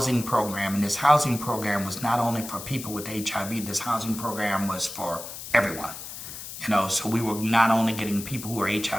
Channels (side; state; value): left; noise; hiss, 10 dB below the sound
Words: program, and this housing program was not only for people with HIV. This housing program was for everyone. You know, so we were not only getting people who are